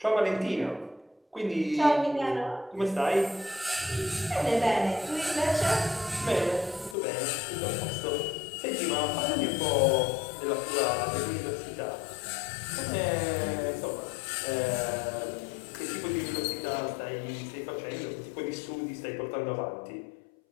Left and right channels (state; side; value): drops out; right; at 7.0 s